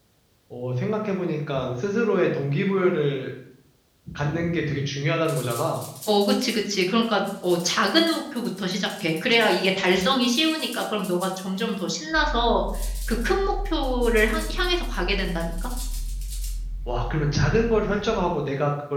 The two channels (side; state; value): both; identical; correlation 1.00